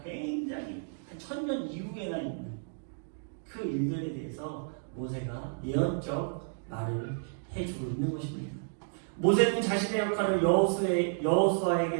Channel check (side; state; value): left; silent; digital silence